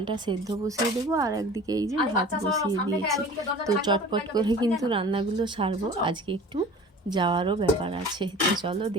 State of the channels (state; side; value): normal; both; correlation 0.42